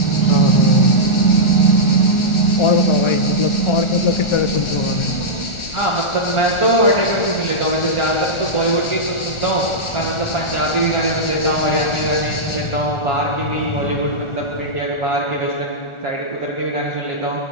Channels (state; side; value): late; right; 1.4 ms